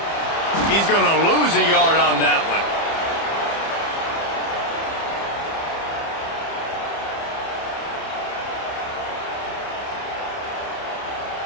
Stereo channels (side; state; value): right; late; 30 ms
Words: He's going to lose a yard on that one.